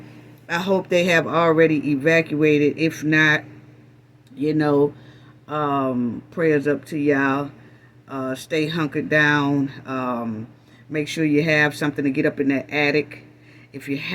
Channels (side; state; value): both; identical; correlation 1.00